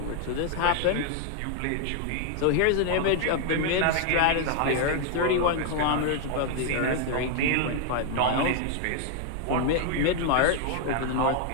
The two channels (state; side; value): different; both; correlation 0.00